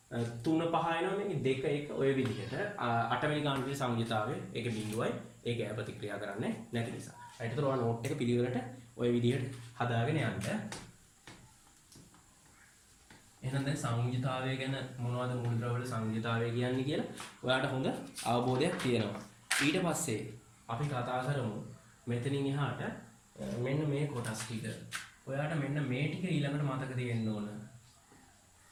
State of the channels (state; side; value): identical; both; correlation 1.00